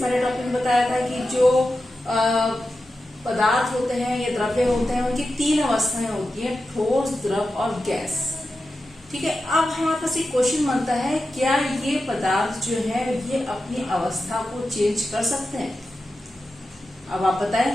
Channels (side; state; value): both; normal; correlation 0.91